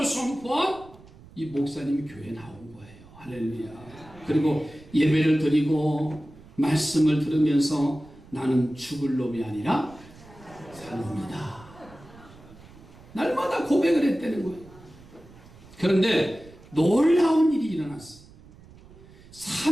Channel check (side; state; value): right; noise; rumble, 22 dB below the sound